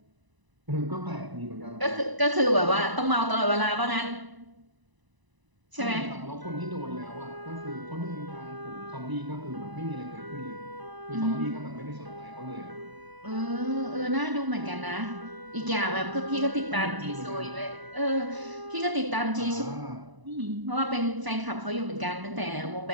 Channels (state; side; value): late; left; 1.0 ms